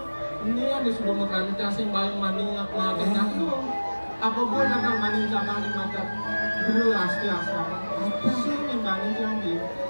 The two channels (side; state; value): both; inverted; correlation -1.00